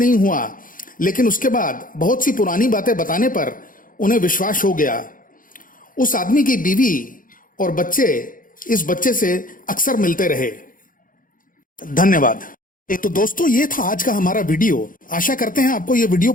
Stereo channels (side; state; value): right; late; 0.40 ms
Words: हुआ, लेकिन उसके बाद बहुत सी पुरानी बातें बताने पर उन्हें विश्वास हो गया। उस आदमी की बीवी और बच्चे इस बच्चे से अक्सर मिलते रहे। धन्यवाद। तो दोस्तों, ये था आज का हमारा वीडियो। आशा करते हैं आपको ये वीडियो